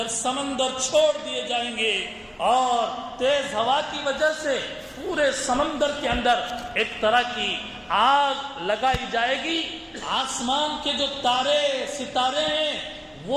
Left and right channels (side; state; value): both; identical; correlation 1.00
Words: سمندر چھوڑ دیے جائیں گے اور تیز ہوا کی وجہ سے پورے سمندر کے اندر ایک طرح کی آگ لگائی جائے گی، آسمان کے جو تارے ستارے ہیں